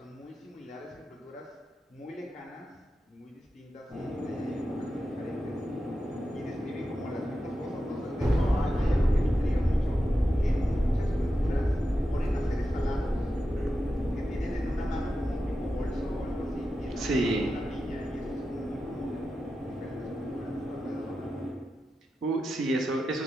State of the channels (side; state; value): both; normal; correlation 0.91